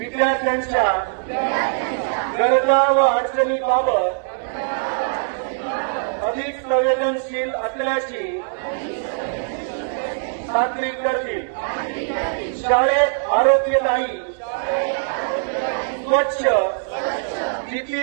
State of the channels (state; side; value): silent; left; 60 dB below the other